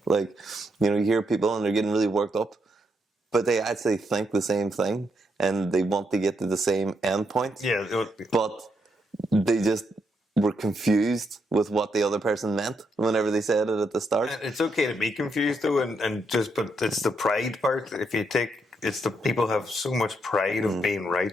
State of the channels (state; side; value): normal; both; correlation 0.79